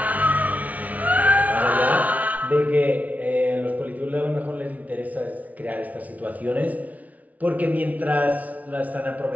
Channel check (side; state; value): left; late; 0.071 ms